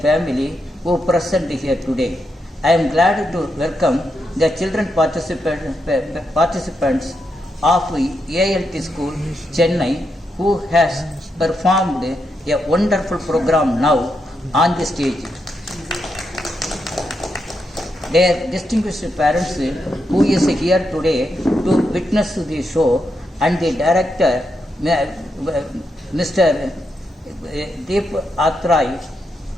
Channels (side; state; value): both; normal; correlation 0.83